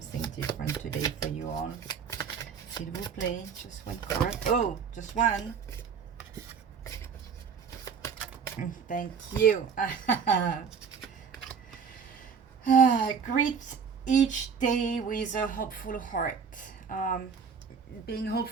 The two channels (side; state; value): left; quieter; 6.4 dB